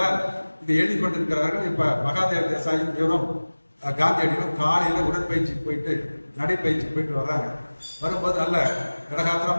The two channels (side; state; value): both; inverted; correlation -1.00